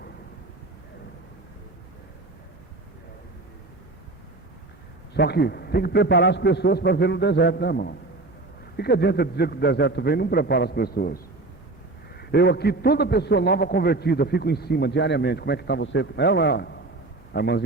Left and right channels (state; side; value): quieter; left; 3.1 dB